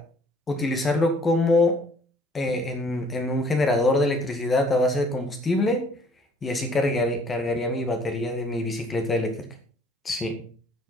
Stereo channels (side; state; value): both; normal; correlation 0.58